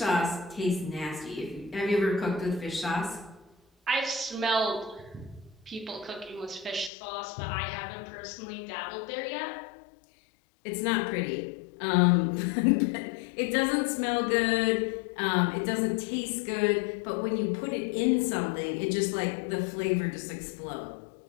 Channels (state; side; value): drops out; right; at 6.9 s